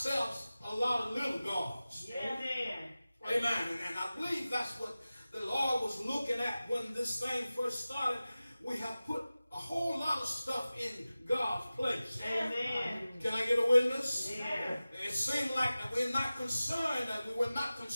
a lot of little gods. Amen. Amen. And I believe that's what the Lord was looking at when this thing first started. We have put a whole lot of stuff in God's place. Amen. Can I get a witness? Yeah. It seemed like that we were not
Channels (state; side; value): inverted; both; correlation -0.96